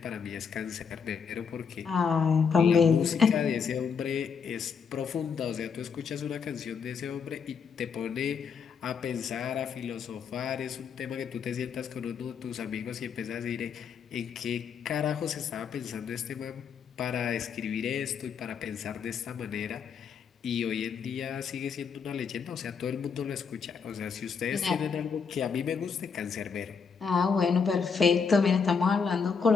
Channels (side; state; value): right; quieter; 6.1 dB